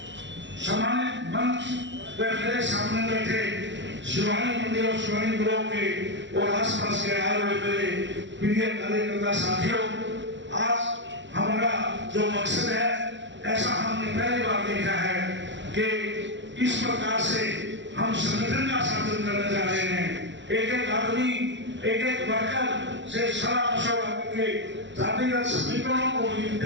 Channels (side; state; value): left; late; 0.53 ms